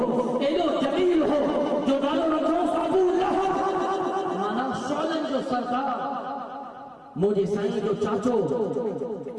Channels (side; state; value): both; identical; correlation 1.00